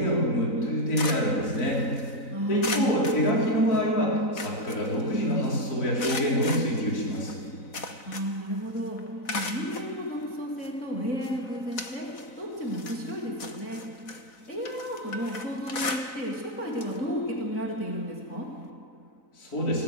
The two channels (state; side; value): late; right; 4.0 ms